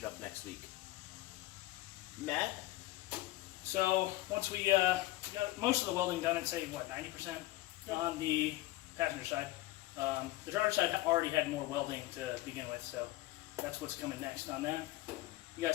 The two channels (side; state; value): right; quieter; 17.9 dB